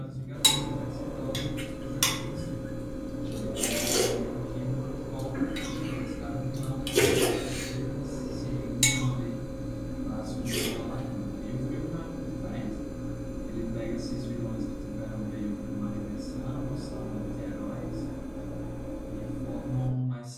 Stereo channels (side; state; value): both; identical; correlation 1.00